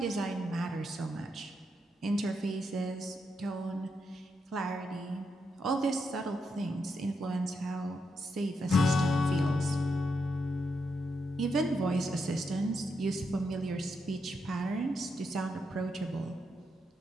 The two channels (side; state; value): both; normal; correlation 0.82